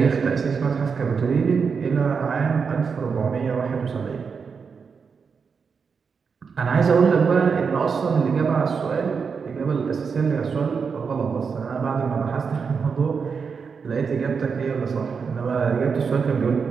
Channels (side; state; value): left; quieter; 5.7 dB